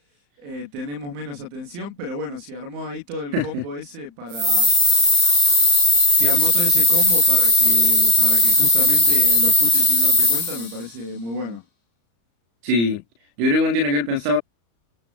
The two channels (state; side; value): late; left; 35 ms